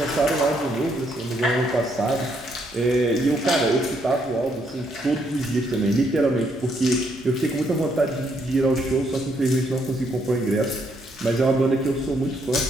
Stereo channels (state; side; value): normal; both; correlation 0.73